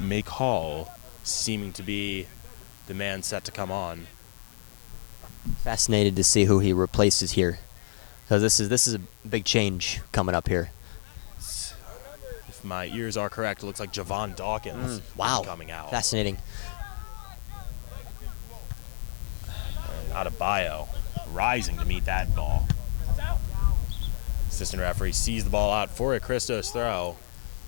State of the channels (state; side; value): silent; right; 59 dB below the other